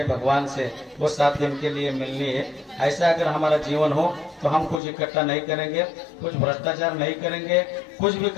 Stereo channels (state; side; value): drops out; right; at 4.8 s